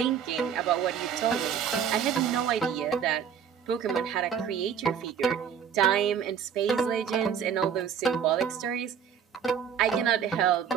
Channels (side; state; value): left; quieter; 7.8 dB